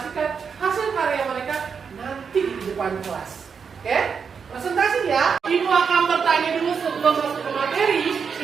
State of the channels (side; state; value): left; quieter; 6.2 dB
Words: hasil karya mereka nanti di depan kelas. Oke? Presentasi ya. Ibu akan bertanya dulu sebelum masuk ke materi.